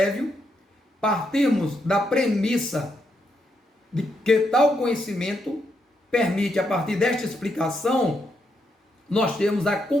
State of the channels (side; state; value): both; normal; correlation 0.79